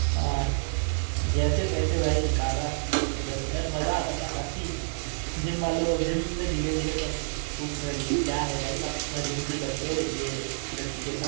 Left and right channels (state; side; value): silent; left; digital silence